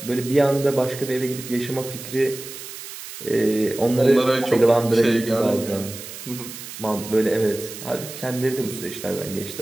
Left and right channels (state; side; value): noise; right; hiss, 12 dB below the sound